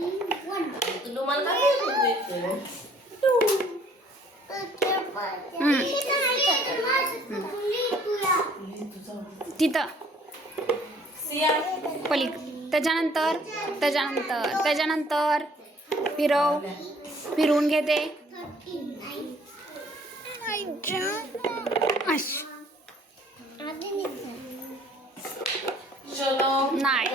तिथं पलीक त्याच्यानंतर त्याच्यानंतर त्याच्यानंतर फिरवून घेते.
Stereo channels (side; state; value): both; normal; correlation 0.59